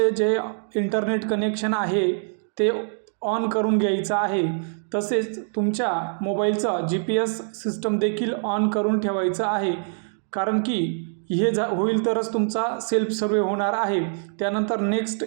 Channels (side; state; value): left; silent; 62 dB below the other